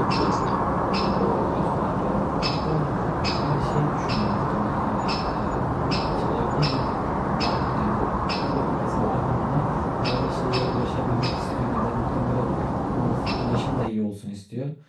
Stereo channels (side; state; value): both; identical; correlation 1.00